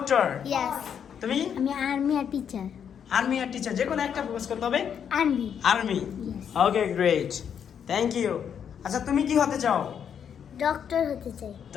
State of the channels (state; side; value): quieter; right; 8.1 dB